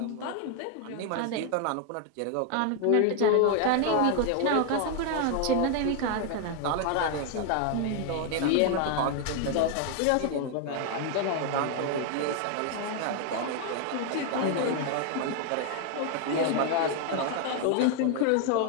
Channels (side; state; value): both; different; correlation 0.00